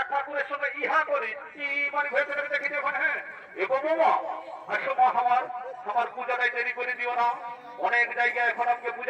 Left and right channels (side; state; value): both; identical; correlation 1.00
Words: ঠাকুরের সঙ্গে ইহা করি কি মানে ভেবে দেখি দেখো হ্যাঁ এগো বাবা আসো মা আমার পূজাটাই দেরি করে দিও না অনেক জায়গায় এখন আমাকে